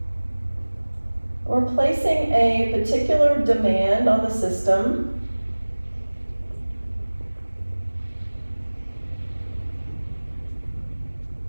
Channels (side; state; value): both; inverted; correlation -1.00